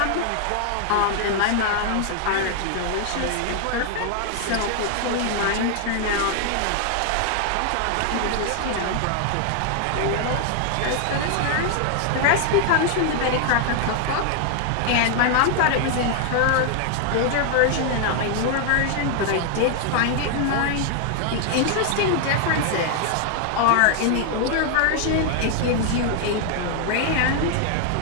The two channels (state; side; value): different; both; correlation 0.00